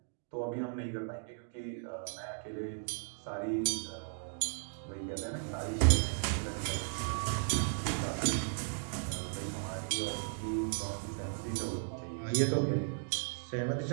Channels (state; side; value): silent; left; digital silence